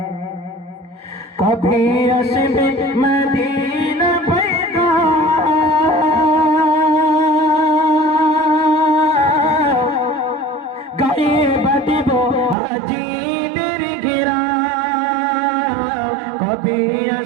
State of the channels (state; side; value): drops out; left; at 12.6 s